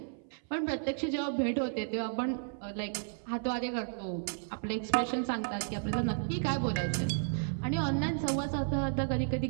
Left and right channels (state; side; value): silent; left; 56 dB below the other